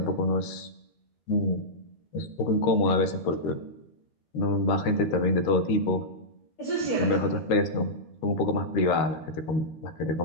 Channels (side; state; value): right; late; 13 ms